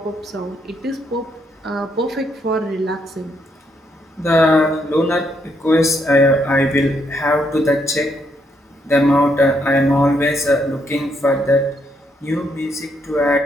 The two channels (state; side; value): normal; both; correlation 0.75